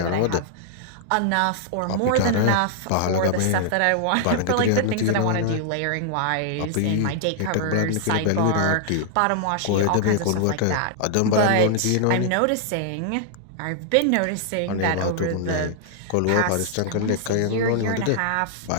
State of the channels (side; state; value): both; different; correlation -0.01